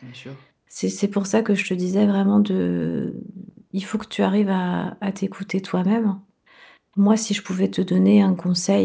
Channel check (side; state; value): both; identical; correlation 1.00